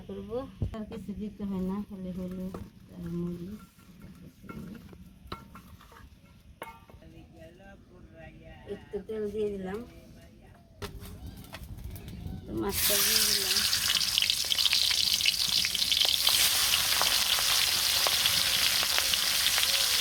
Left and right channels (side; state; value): both; identical; correlation 1.00